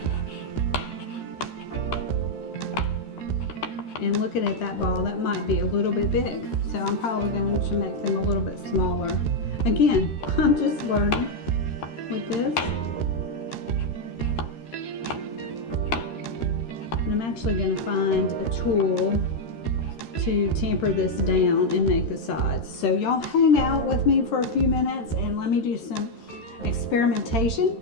And looking at that ball, that might be a little bit big. So I'm probably going to make them a little bit smaller. Again, I'm just learning with this. And I'm actually going to find a tool to tamper this down and make the sides. So y'all hang out with me for a few minutes and let me do some experimentation,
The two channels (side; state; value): right; late; 13 ms